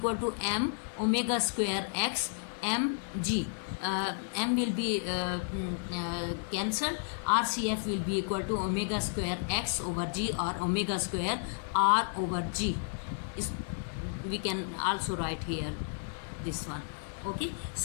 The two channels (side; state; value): right; silent; 56 dB below the other